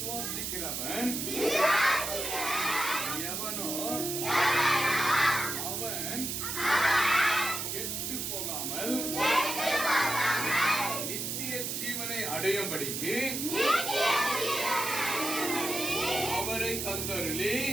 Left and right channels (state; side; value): noise; right; hiss, 3 dB below the sound